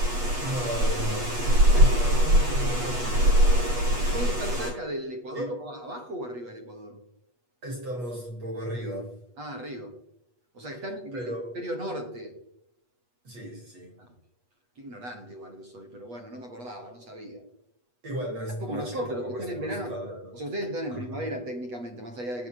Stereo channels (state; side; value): late; left; 8.2 ms